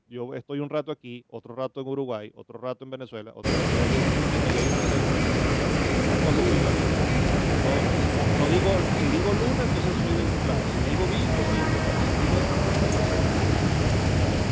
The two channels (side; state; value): both; identical; correlation 1.00